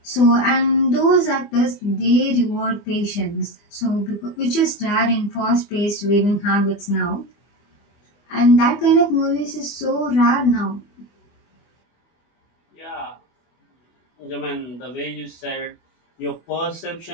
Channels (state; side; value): late; right; 24 ms